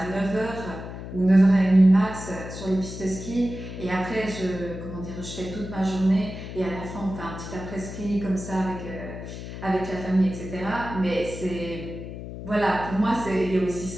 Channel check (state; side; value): noise; left; hum, 10 dB below the sound